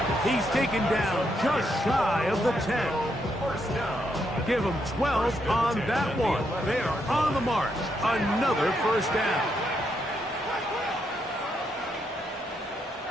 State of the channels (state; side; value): normal; both; correlation 0.79